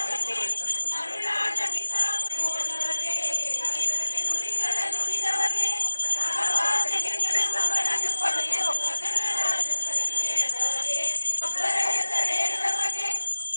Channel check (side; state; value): both; inverted; correlation -1.00